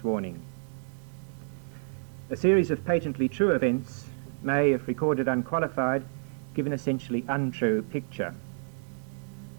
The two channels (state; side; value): silent; left; digital silence